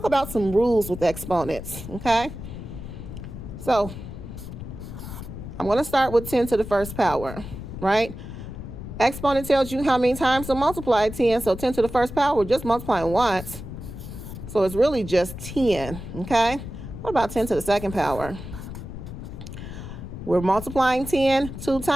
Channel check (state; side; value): noise; left; rumble, 10 dB below the sound